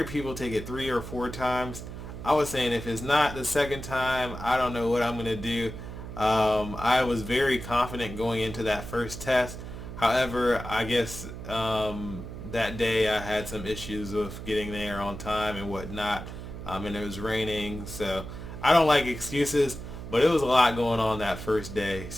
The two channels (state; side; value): noise; right; hum, 10 dB below the sound